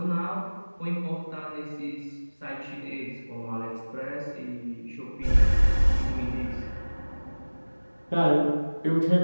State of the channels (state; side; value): inverted; both; correlation -1.00